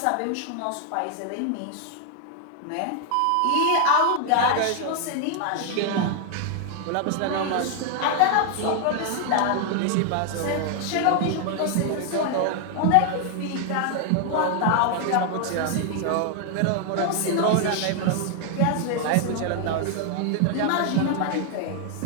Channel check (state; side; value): different; both; correlation 0.00